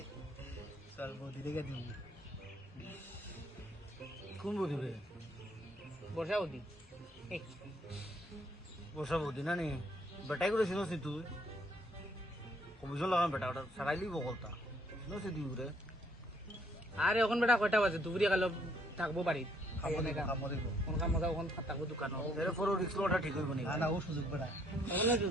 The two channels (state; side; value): normal; both; correlation 0.67